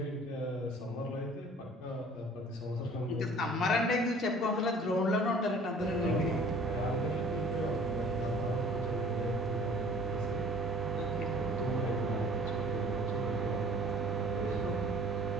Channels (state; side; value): normal; both; correlation 0.51